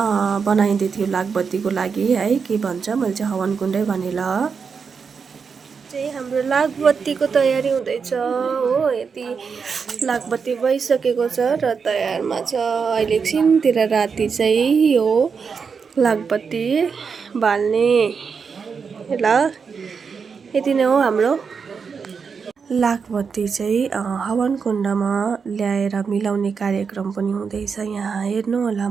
बनाइँदै थियो लागबत्तीको लागि है। के भन्छ, मैले चाहिँ हवन कुण्डै भनेर चाहिँ हाम्रो लागबत्तीको तयारी हुँदैछ हो। यति लागबत्ती भइसकेको छ र तयारमा छ। अहिले एकछिनतिर राति चाहिँ यो लागबत्ती बाल्ने ल। यति नै हो हाम्रो लागबत्ती चाहिँ हवन कुण्डमा ल्याएर मिलाउने कार्यक्रम पनि हुँदैछ। यहाँ हेर्नु होला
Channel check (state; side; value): quieter; left; 5.7 dB